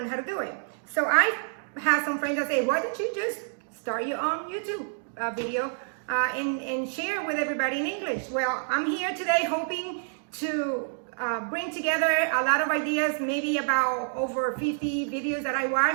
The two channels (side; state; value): left; silent; digital silence